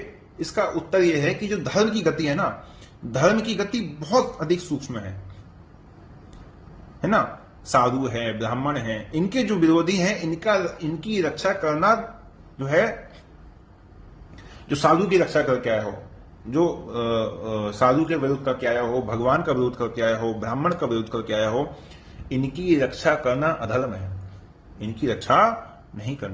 इसका उत्तर यह है कि जो धर्म की गति है ना, धर्म की गति बहुत अधिक सूक्ष्म है ना। साधु है, ब्राह्मण है, इनके जो विरोधी हैं, इनकी रक्षा करना जो है, जो साधु की रक्षा करके आया हो, जो साधु के विरोध करके आया हो, भगवान का विरोध करके आया हो, ब्राह्मण का विरोध करके आया हो, इनकी रक्षा करना अधर्म है। इनकी रक्षा नहीं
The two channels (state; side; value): identical; both; correlation 1.00